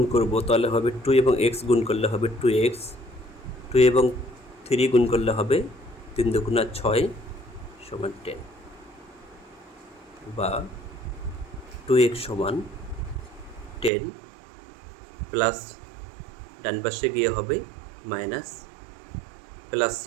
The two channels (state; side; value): drops out; left; at 13.9 s